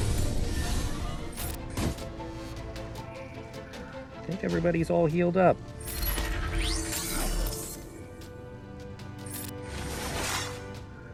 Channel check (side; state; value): both; identical; correlation 1.00